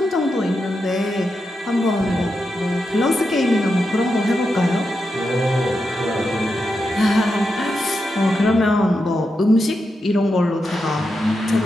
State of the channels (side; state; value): both; normal; correlation 0.87